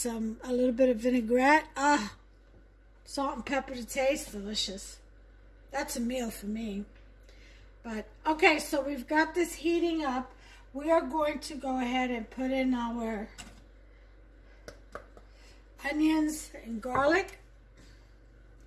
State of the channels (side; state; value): both; identical; correlation 1.00